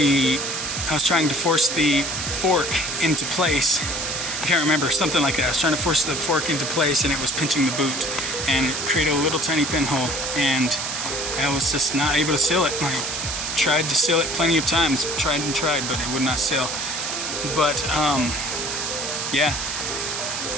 was trying to force the fork into place. I can't remember, something like that. I was trying to force the fork into place, and it was pinching the boot, and it created a little tiny pinhole, and I was just not able to seal it. I tried to seal it plenty of times, tried, but it would not seal. But yeah,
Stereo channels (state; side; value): noise; right; hiss, 3 dB below the sound